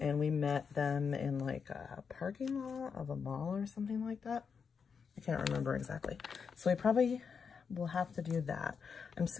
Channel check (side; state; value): right; quieter; 6.1 dB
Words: we met them in like a parking lot of a mall or something like that. I can't remember exactly. So we probably will have to do that. I'm